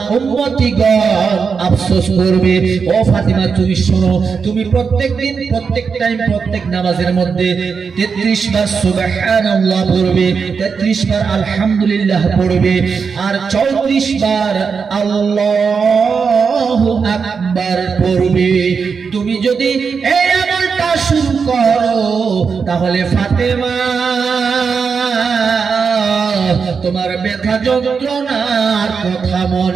উম্মতিগণ আফসোস করবে। ও ফাতিমা, তুমি শোনো, তুমি প্রত্যেকদিন, প্রত্যেক টাইম, প্রত্যেক নামাজের মধ্যে 33 বার সুবহানাল্লাহ পড়বে, 33 বার আলহামদুলিল্লাহ পড়বে, আর 34 বার আল্লাহু আকবার পড়বে। তুমি যদি এই আমলটা শুরু করো, তাহলে ফাতেমা তোমার ব্যথা যন্ত্রণার কথা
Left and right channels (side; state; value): left; quieter; 5.6 dB